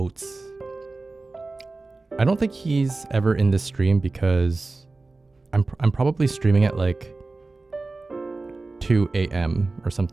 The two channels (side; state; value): left; quieter; 3.5 dB